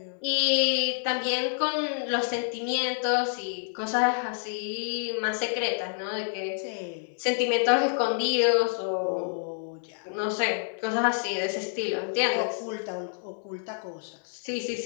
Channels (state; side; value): silent; right; 59 dB below the other